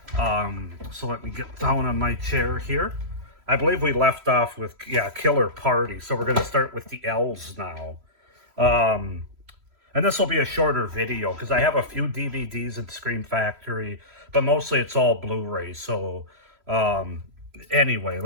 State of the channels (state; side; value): late; left; 3.0 ms